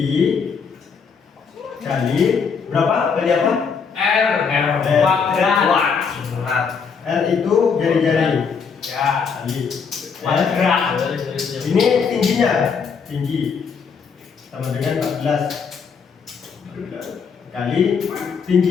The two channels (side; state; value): right; quieter; 5.9 dB